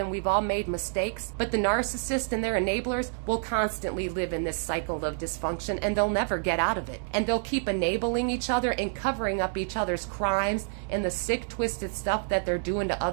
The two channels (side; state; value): left; silent; digital silence